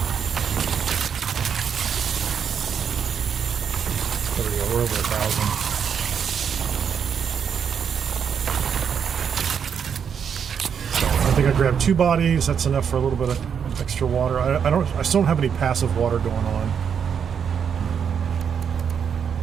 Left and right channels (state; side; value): quieter; left; 7.4 dB